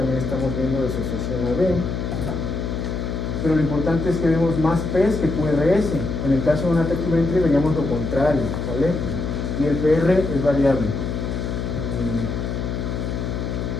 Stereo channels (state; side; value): noise; left; hum, 3 dB below the sound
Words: estamos viendo disociación AB. Pero lo importante es que vemos más P's que QRS. En el caso de un ataque ventri veríamos lo contrario, ¿vale? Y el PR es variable.